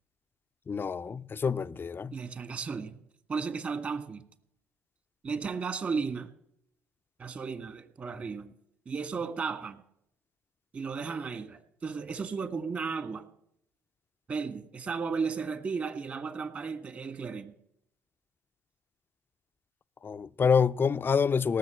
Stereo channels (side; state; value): both; normal; correlation 0.77